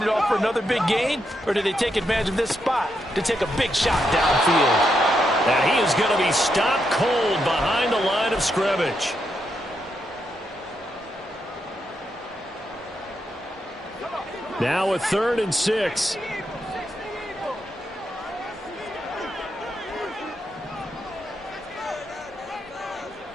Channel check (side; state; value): both; normal; correlation 0.82